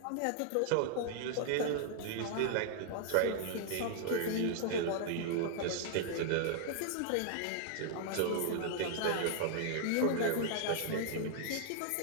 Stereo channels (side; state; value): both; different; correlation -0.01